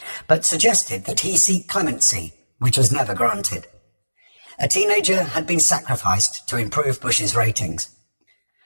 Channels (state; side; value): inverted; both; correlation -1.00